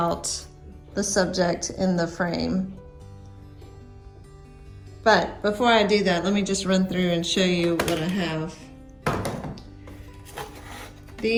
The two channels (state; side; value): identical; both; correlation 1.00